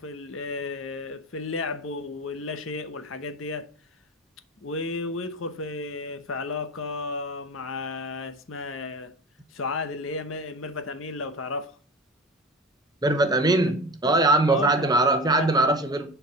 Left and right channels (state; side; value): normal; both; correlation 0.31